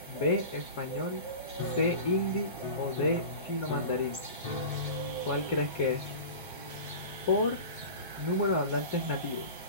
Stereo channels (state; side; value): inverted; both; correlation -0.34